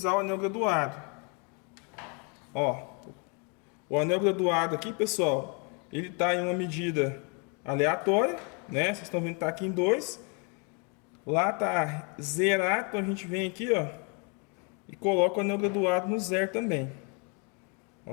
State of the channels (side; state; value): right; quieter; 35.1 dB